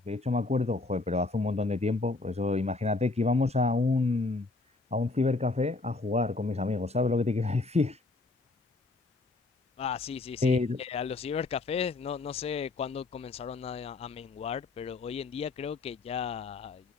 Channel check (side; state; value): right; quieter; 3.4 dB